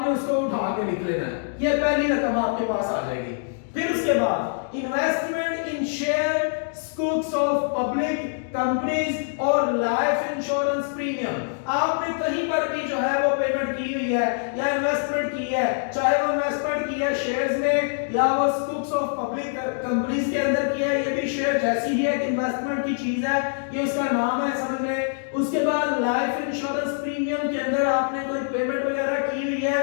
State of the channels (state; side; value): silent; right; digital silence